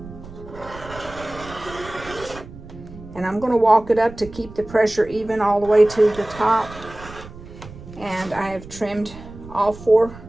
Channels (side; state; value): right; noise; rumble, 16 dB below the sound